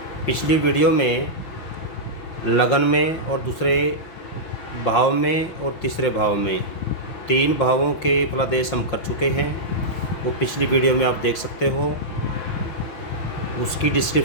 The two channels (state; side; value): late; right; 6.0 ms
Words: पिछली वीडियो में लगन में और दूसरे भाव में और तीसरे भाव में 3 भावों के फलादेश हम कर चुके हैं। वो पिछली वीडियो में आप देख सकते हो, उसकी